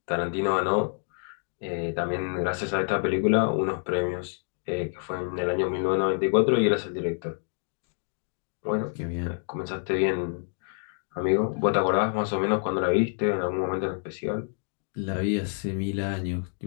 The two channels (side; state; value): right; silent; 60 dB below the other